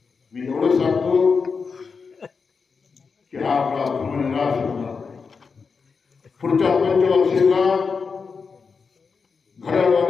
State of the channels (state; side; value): quieter; right; 5.2 dB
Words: मी एवढं सांगतो की हा आपला धर्मनिराश होणार. पुढच्या पंचवर्षीला